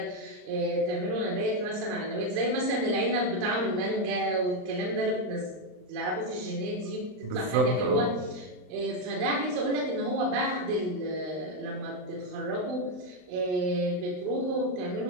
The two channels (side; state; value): left; late; 39 ms